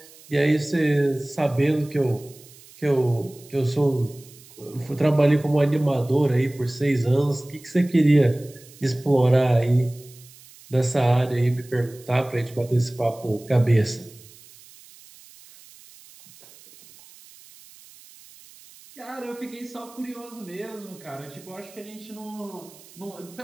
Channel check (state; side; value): noise; right; hiss, 23 dB below the sound